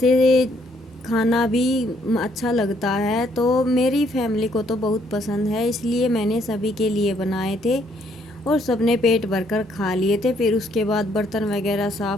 खाना भी अच्छा लगता है, तो मेरी फैमिली को तो बहुत पसंद है, इसलिए मैंने सभी के लिए बनाए थे और सबने पेट भरकर खा लिए थे। फिर उसके बाद बर्तन वगैरह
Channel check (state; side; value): normal; both; correlation 0.69